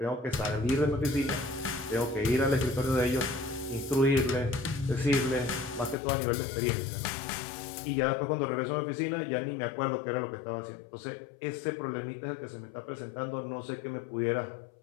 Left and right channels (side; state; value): right; drops out; at 6.0 s